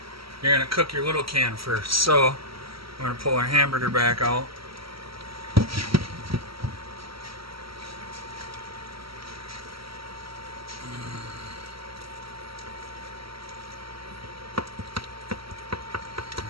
you're going to cook your little can first. So we're going to pull our hamburger back out.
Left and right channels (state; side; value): late; left; 0.75 ms